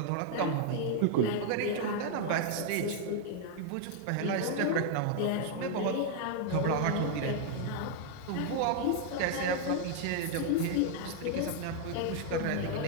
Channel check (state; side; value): different; both; correlation 0.00